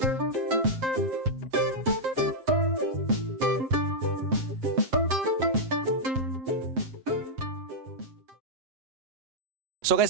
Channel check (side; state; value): left; late; 7.6 ms